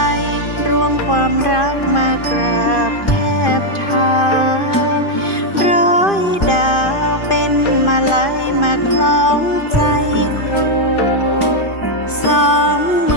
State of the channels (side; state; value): right; late; 2.5 ms